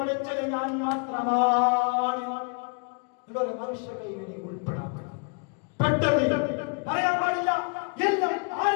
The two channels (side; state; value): right; quieter; 34.4 dB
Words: ഞാൻ മാത്രമാണ്. എന്നൊരു മനുഷ്യ കൈവിനെ ഉൾപ്പെടാത്ത പെട്ടത് അറിയാൻ പാടില്ല. എല്ലാം